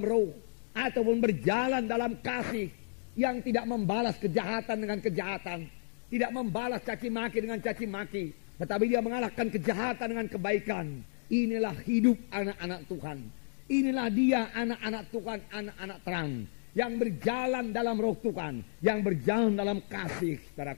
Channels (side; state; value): right; silent; digital silence